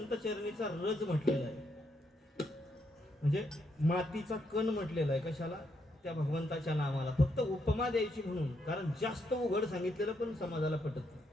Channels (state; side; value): normal; both; correlation 0.77